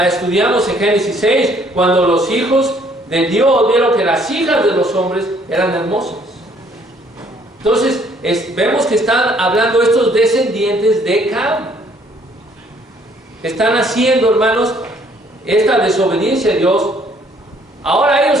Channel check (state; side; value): normal; both; correlation 0.63